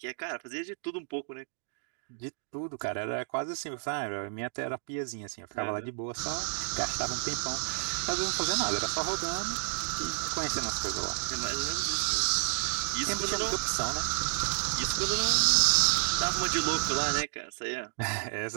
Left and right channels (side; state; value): left; silent; digital silence